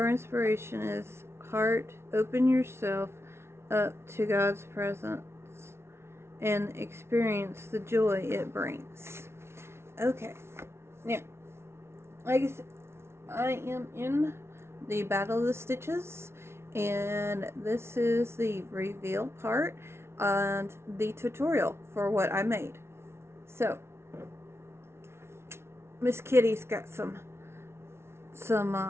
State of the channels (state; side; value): late; left; 0.12 ms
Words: inspiration is, heart, open yourself up to God's presence and experience the joy it brings. Okay, now, like I said, I am in the Battle of the Stitches, and this is the reveal part and the tutorial for what I made. So, Miss Kitty's got some